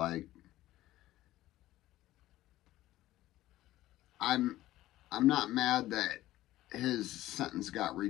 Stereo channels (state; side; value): quieter; right; 15.5 dB